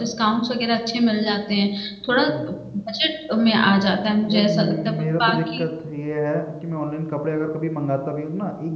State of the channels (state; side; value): identical; both; correlation 1.00